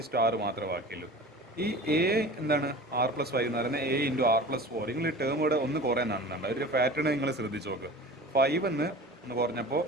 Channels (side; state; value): both; normal; correlation 0.38